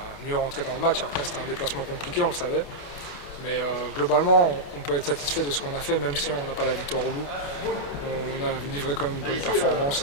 mieux rentrer dans le match. Après, c'était un déplacement compliqué, on le savait. Mais globalement, on peut être satisfait de ce qu'on a fait, même si on n'a pas la victoire au bout. On a livré quand même une bonne performance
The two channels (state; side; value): late; right; 28 ms